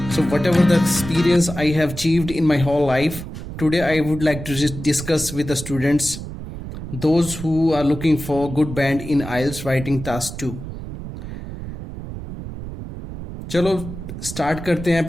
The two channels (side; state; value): right; noise; rumble, 10 dB below the sound